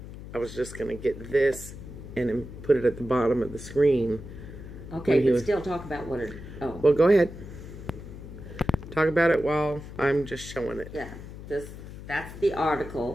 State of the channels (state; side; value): noise; left; hum, 13 dB below the sound